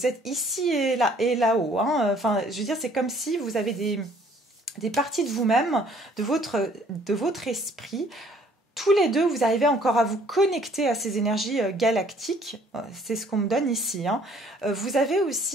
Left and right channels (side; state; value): both; normal; correlation 0.59